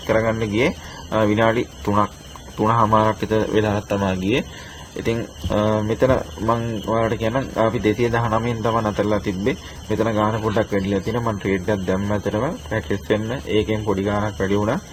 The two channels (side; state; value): both; identical; correlation 1.00